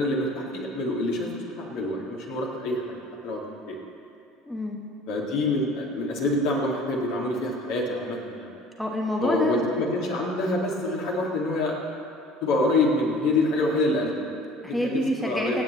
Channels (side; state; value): both; normal; correlation 0.48